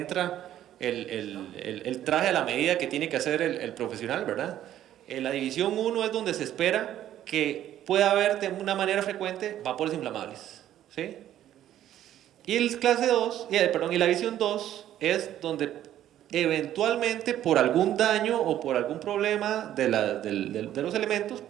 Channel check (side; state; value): left; quieter; 12.0 dB